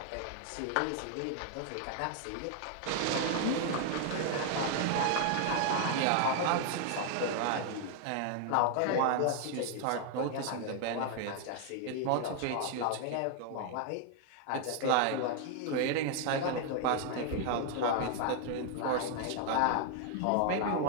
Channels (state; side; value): different; both; correlation 0.00